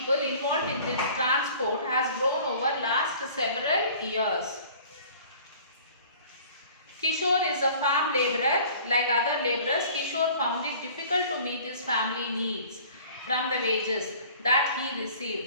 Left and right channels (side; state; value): both; inverted; correlation -0.48